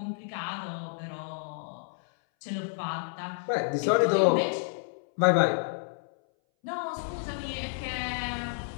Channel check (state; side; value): silent; right; 58 dB below the other